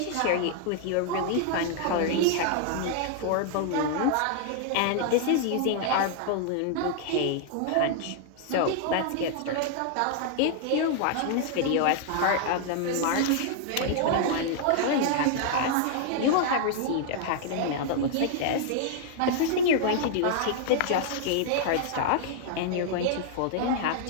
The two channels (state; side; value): different; both; correlation 0.00